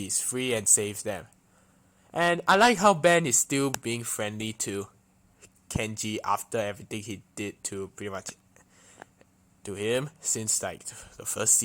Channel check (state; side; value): identical; both; correlation 1.00